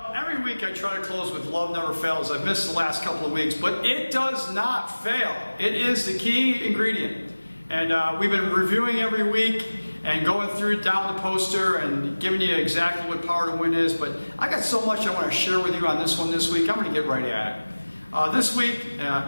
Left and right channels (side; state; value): both; inverted; correlation -1.00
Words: every week I try to close with love never fails. I've missed the last couple of weeks, but it does not fail. It is the key ingredient. And we've been reviewing every week and going through down the poster and giving you exactly what Power to Win is. But I got so much I want to share with you on this one this week. I'm going to get right at it. This week